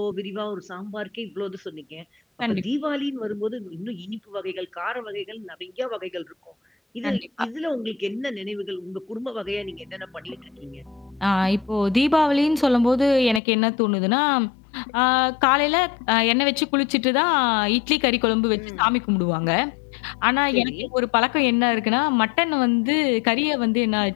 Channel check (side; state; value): right; drops out; at 13.4 s